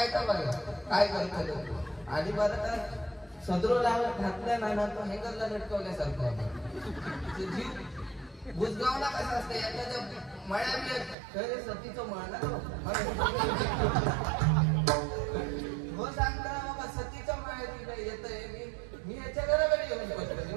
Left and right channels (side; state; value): left; drops out; at 11.2 s